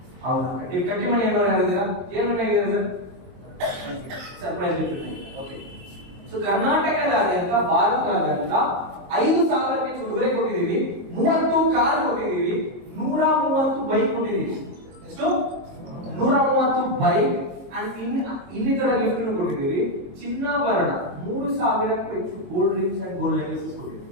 ಹೌದು, ಕಟ್ಟಿ ಮಣಿ ಏನಾದ್ರು ಆಗಿದ್ದೀರಾ? ಏನ್ ವಿನ್ ಆಗಿದ್ದೀರಾ sir? Surprise gift. Okay. So ಕರ್ನಾಟಕದಾದ್ಯಂತ, ಭಾರತದಾದ್ಯಂತ 5,000 ಹೆಚ್ಚು ಉಡುಗೊರೆ ಕೊಟ್ಟಿದ್ದೀವಿ, 30 ಕಾರ್ ಕೊಟ್ಟಿದ್ದೀವಿ, 130 ಬೈಕ್ ಕೊಟ್ಟಿದ್ದೀವಿ. ಎಷ್ಟು? 130 ಬೈಕ್ ಅಂಡ್ ಇನ್ನಿತರ ಗಿಫ್ಟ್ ಕೊಟ್ಟಿದ್ದೀವಿ. ಚಿನ್ನಾಭರಣ 3,000ಕ್ಕೂ ಹೆಚ್ಚು gold rings and gold necklaces ಕೊಟ್ಟಿದ್ದೀವಿ.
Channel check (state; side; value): late; left; 22 ms